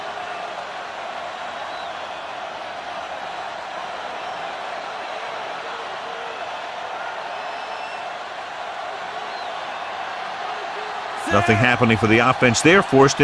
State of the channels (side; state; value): both; identical; correlation 1.00